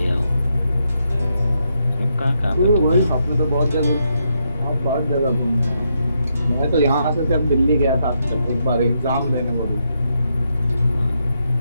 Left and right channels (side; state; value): both; inverted; correlation -0.80